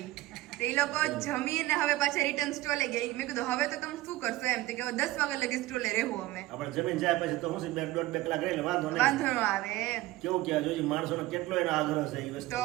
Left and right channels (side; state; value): left; quieter; 17.6 dB